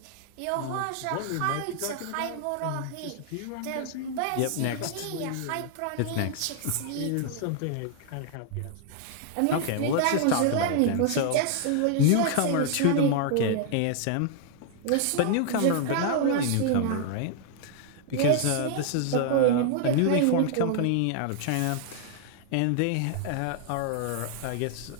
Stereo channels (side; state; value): both; different; correlation 0.00